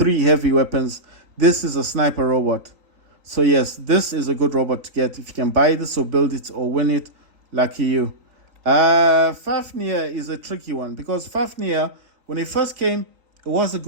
heavy weapons. This is a sniper robot. So yes, this is a good robot to get. If you can buy this or build it or win it, lucky you. Fafnir is a tricky one because Fafnir, when it first came, it was a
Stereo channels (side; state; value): left; late; 3.8 ms